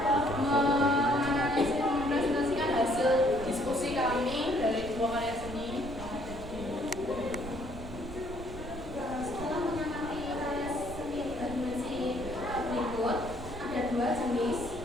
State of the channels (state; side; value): noise; right; rumble, 12 dB below the sound